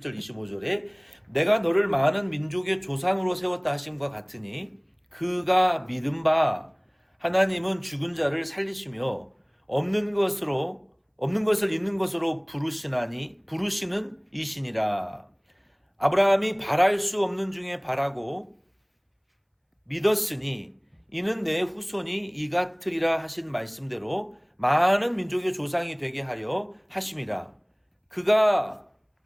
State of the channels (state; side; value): identical; both; correlation 1.00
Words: 25절에 내가 너를 많은 민족의 조상으로 세웠다 하심과 같으니 그가 믿은 바 하나님은 죽은 자를 살리시며 없는 것을 있는 것으로 부르시는 이시니라. 아브라함이 바랄 수 없는 중에 바라고 믿었으니 이는 내 후손이 이 같으리라 하신 말씀대로 많은 민족의 조상이 되게 하려 하심이라. 그가